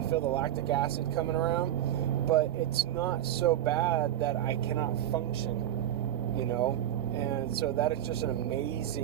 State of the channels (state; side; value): quieter; left; 11.8 dB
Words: feel the lactic acid coming around, but it's not so bad that I cannot function, And so that is just an